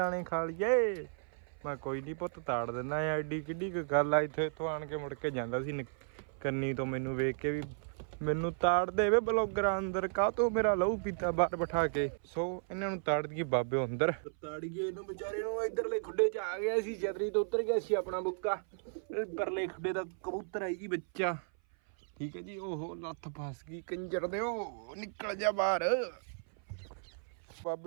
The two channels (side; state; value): left; silent; 55 dB below the other